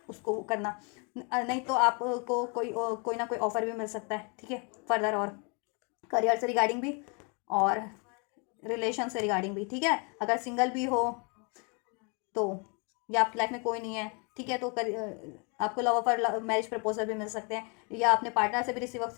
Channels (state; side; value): quieter; right; 34.5 dB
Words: उसको करना, नहीं तो आपको कोई ना कोई ऑफर भी मिल सकता है, ठीक है, फर्दर, और करियर से रिगार्डिंग भी और रिलेशन से रिगार्डिंग भी, ठीक है। अगर सिंगल भी हो तो, या आपकी लाइफ में कोई नहीं है, ठीक है, तो आपको लव ऑफर, मैरिज प्रपोजल भी मिल सकते हैं, या अपने पार्टनर से भी रिसीव हो